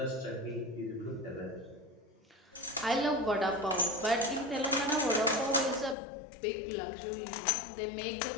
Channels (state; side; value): drops out; right; at 6.0 s